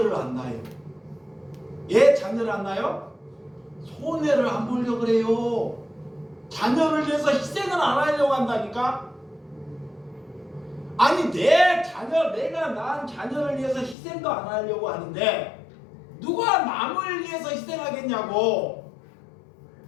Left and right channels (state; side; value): drops out; right; at 14.0 s